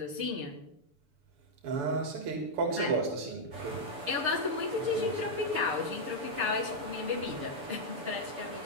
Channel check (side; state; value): left; late; 7.0 ms